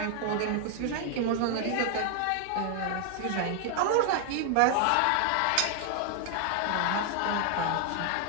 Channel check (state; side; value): different; both; correlation 0.01